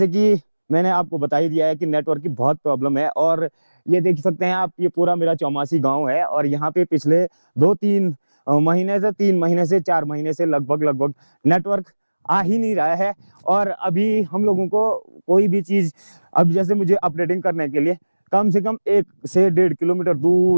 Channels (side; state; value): both; inverted; correlation -1.00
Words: कि मैंने आपको बता ही दिया है कि नेटवर्क की बहुत प्रॉब्लम है। और ये देख सकते हैं आप, ये पूरा मेरा चौमासी गांव है और यहाँ पे पिछले 2-3 महीने से, 3 महीने से, 4 महीने से लगभग नेटवर्क आ ही नहीं रहा है। और अभी हम लोगों को कोई भी चीज, अब जैसे मुझे अपडेटिंग करने के लिए कम से कम 1 से 1.5 किलोमीटर